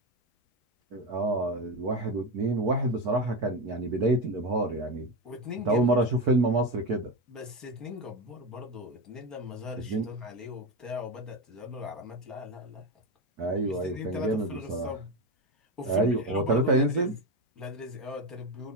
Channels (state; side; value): normal; both; correlation 0.16